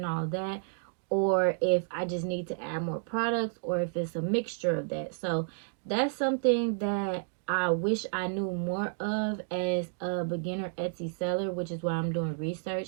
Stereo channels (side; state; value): left; silent; digital silence